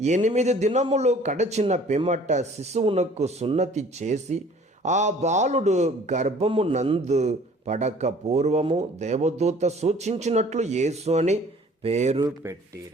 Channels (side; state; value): both; normal; correlation 0.52